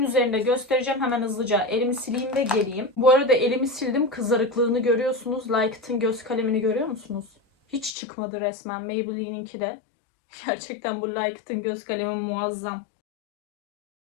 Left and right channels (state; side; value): drops out; right; at 8.0 s